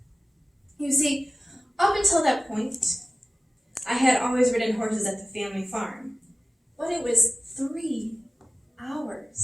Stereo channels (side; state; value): both; normal; correlation 0.97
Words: You see, up until that point, I had always ridden horses at the family farm, but it was 3